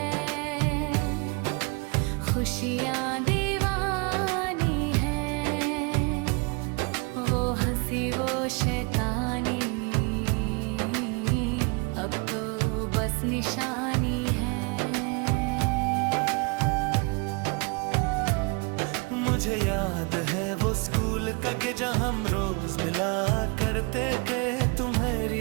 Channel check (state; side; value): quieter; left; 30.4 dB